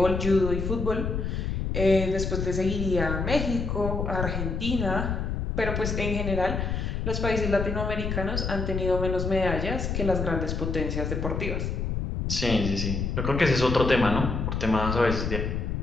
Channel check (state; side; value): noise; left; rumble, 2 dB below the sound